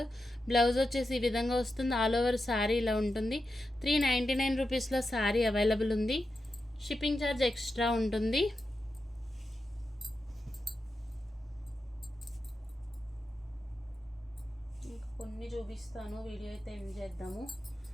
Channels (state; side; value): normal; both; correlation 0.89